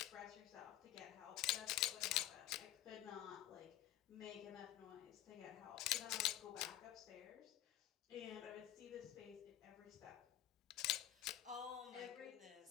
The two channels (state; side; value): quieter; right; 13.2 dB